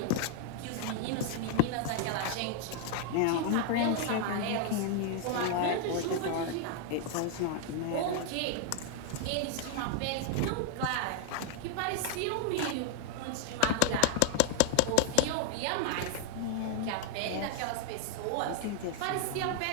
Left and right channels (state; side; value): different; both; correlation 0.00